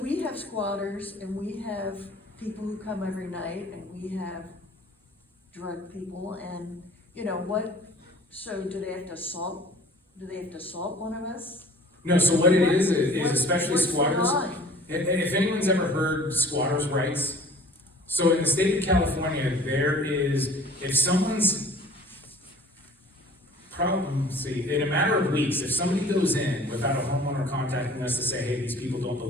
we have squatters and we have people who come every night and we have drug people and, so do they have to assault one of us? No, so what it is especially what's the squatters. line? If anyone's ever heard squatters' rights, so in the state of California, there is, if someone's in a matter of weeks, if somebody goes in without a homeowner contacting us to say, hey, these people don't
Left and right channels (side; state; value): both; normal; correlation 0.48